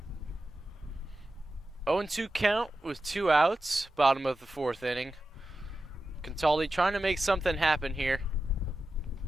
Oh and 2 count with 2 outs. Bottom of the fourth inning. Contaldi trying to make something happen here.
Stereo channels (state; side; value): normal; both; correlation 0.92